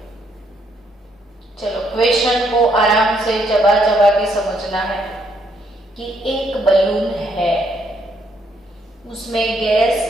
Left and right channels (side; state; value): both; normal; correlation 0.72